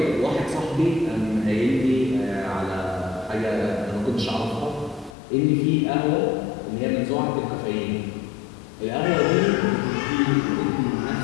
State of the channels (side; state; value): right; drops out; at 5.2 s